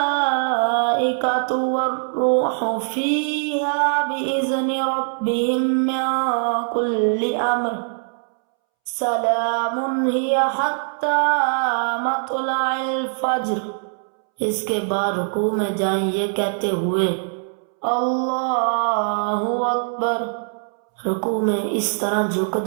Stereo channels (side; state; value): left; silent; 64 dB below the other